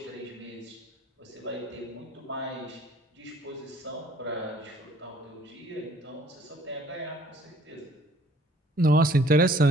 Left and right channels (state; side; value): normal; both; correlation 0.57